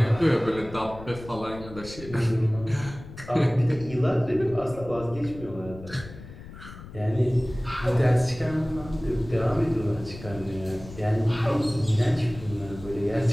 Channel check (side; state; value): left; noise; rumble, 15 dB below the sound